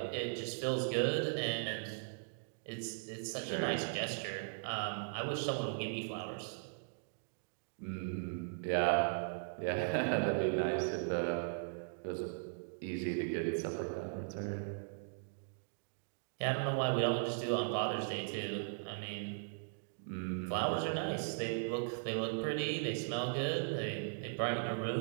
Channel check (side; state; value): left; silent; digital silence